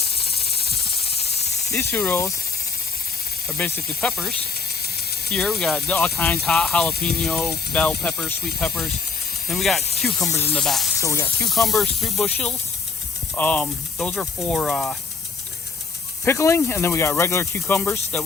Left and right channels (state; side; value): quieter; right; 4.8 dB